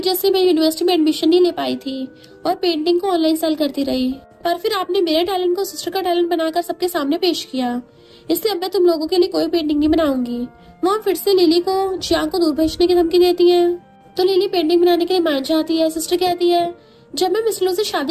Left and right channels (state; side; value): identical; both; correlation 1.00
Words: से मैं यूनिवर्सिटी में एडमिशन नहीं ले पाई थी और पेंटिंग को ऑनलाइन सेल करती रही, पर फिर आपने मेरे टैलेंट को सिस्टर का टैलेंट बनाकर सबके सामने पेश किया, इसलिए अब मैं तुम लोगों के लिए कोई पेंटिंग नहीं बनाऊंगी। मॉम फिर से लिली को जियांग को दूर भेजने की धमकी देती है तो लिली पेंटिंग बनाने के लिए मान जाती है। सिस्टर कहती है जब मैं मिस्टर लू से